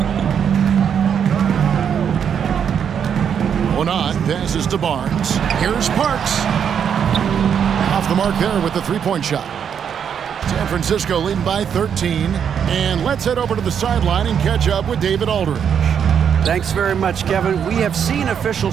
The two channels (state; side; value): quieter; left; 7.9 dB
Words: Onan passes to Barnes. Here's Parks. Off the mark there with the 3-point shot. San Francisco leading by 13. And let's head over to the sideline and catch up with David Aldridge. Thanks very much, Kevin. We have seen